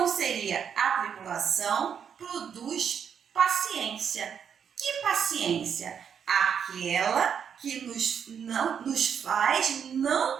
seria a tribulação produz paciência. Que paciência? Aquela que nos faz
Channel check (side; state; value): left; quieter; 7.6 dB